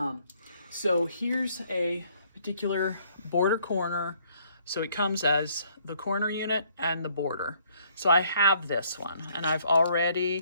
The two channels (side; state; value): both; inverted; correlation -0.65